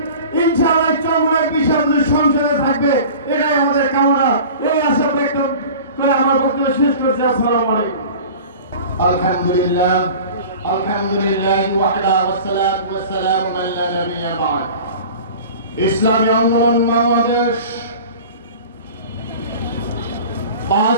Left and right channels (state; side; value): inverted; both; correlation -0.40